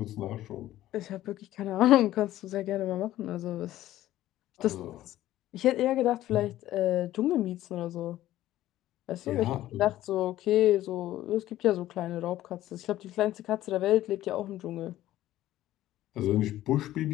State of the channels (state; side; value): quieter; right; 14.3 dB